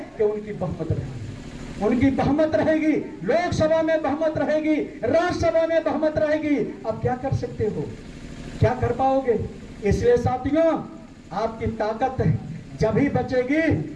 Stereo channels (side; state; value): both; identical; correlation 1.00